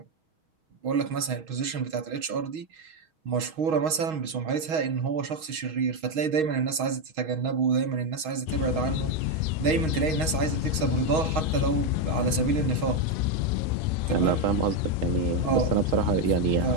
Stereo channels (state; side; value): late; left; 6.3 ms